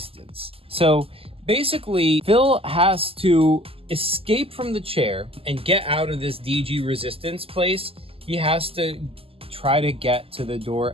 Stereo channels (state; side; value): late; left; 0.27 ms